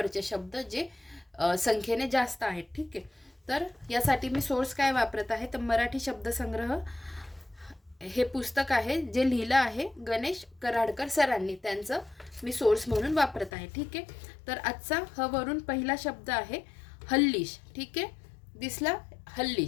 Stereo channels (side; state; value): right; drops out; at 13.5 s